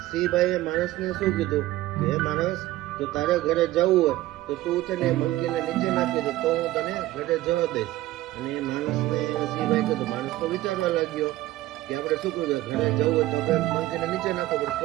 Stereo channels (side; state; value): left; quieter; 16.4 dB